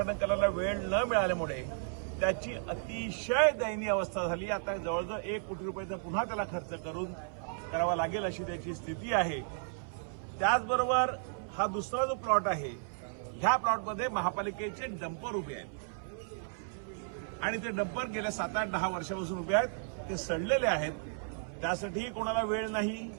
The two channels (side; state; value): left; silent; 55 dB below the other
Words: करायला वेळ न मिळाल्यामुळे त्याची अतिशय दयनीय अवस्था झाली। आता जवळजवळ 1 कोटी रुपयाचा पुन्हा त्याला खर्च करून करावा लागेल अशी त्याची स्थिती आहे। त्याचबरोबर हा दुसरा जो प्लॉट आहे, ह्या प्लॉटमध्ये महापालिकेचे डंपर उभे आहेत आणि ते डंपर गेल्या 7-8-10 वर्षापासून उभे आहेत। ते सडलेले आहेत, त्यासाठीही कोणाला वेळ नाही।